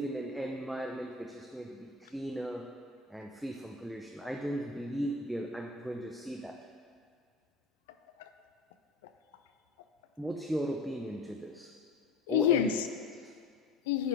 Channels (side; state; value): right; quieter; 3.7 dB